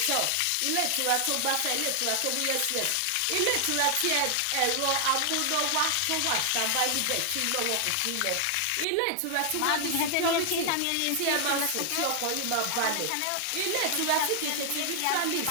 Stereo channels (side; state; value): both; different; correlation 0.00